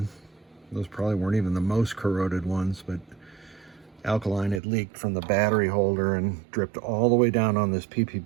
Those probably weren't even the most corroded ones, but alkaline had leaked from the battery holder and dripped all the way down on this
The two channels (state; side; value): drops out; left; at 4.6 s